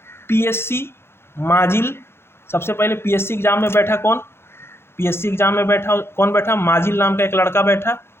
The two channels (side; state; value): right; late; 0.12 ms